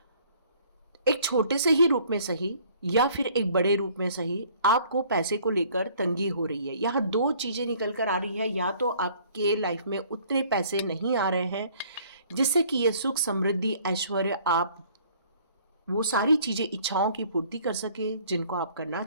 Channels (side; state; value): both; inverted; correlation -0.56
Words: एक छोटे से ही रूप में सही या फिर एक बड़े रूप में सही आपको पैसे को लेकर तंगी हो रही है। यहाँ 2 चीज़ें निकल कर आ रही है। या तो आपके लाइफ में उतने पैसे नहीं आ रहे हैं जिससे कि ये सुख समृद्धि ऐश्वर्य, आप वो सारी चीज़ें, इच्छाओं की पूर्ति कर सके जिनको आप करना